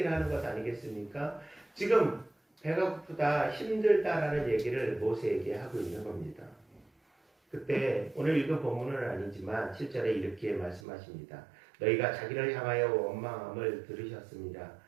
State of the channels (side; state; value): left; drops out; at 10.8 s